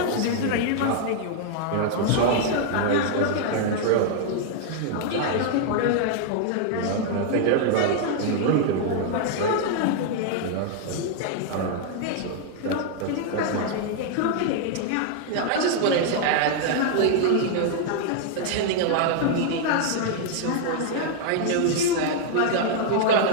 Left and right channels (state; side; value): different; both; correlation -0.01